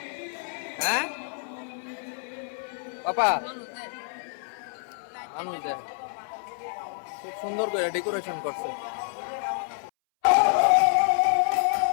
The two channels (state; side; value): silent; right; 60 dB below the other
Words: হ্যাঁ পাপা, মানুষ দেখ, খুব সুন্দর করে ডেকোরেশন করছে।